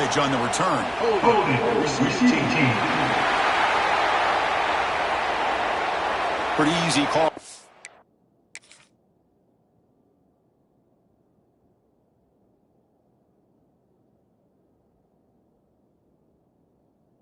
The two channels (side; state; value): both; identical; correlation 1.00